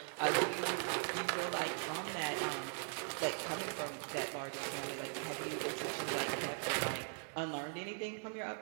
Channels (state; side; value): silent; left; 51 dB below the other